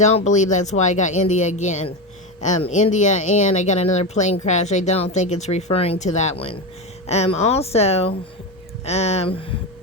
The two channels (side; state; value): both; normal; correlation 0.17